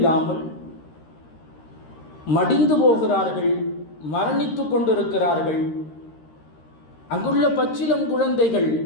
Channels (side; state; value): right; late; 13 ms